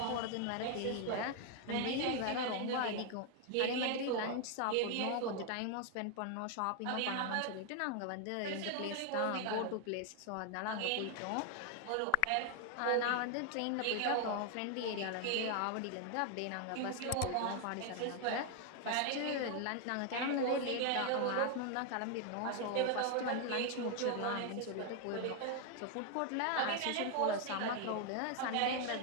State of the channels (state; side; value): different; both; correlation 0.00